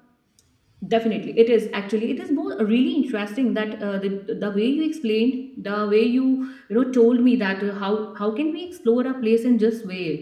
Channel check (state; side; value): identical; both; correlation 1.00